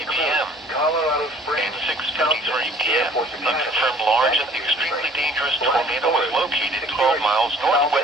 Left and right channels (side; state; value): both; normal; correlation 0.53